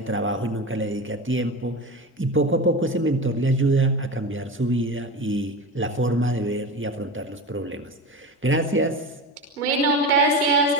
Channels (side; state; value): both; normal; correlation 0.26